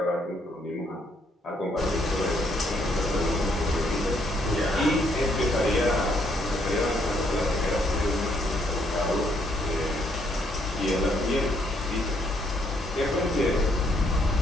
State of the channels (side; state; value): both; normal; correlation 0.71